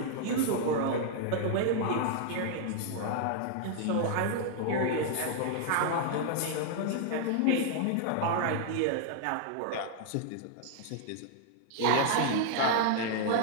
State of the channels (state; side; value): different; both; correlation -0.01